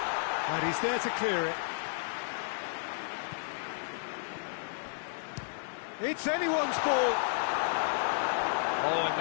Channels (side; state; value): right; silent; digital silence